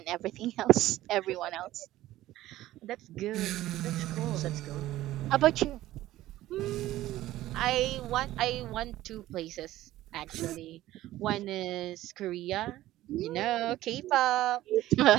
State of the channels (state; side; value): quieter; left; 15.2 dB